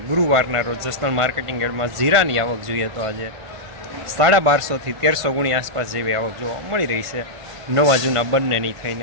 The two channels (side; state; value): left; late; 1.5 ms